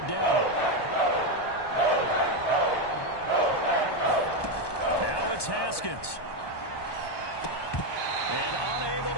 down. Now it's Haskins. And unable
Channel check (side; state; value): right; late; 1.2 ms